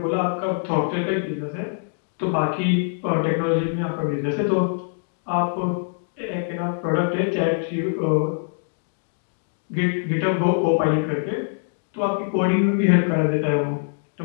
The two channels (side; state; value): right; silent; 63 dB below the other